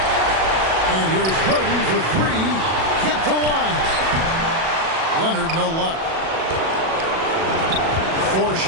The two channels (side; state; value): left; late; 37 ms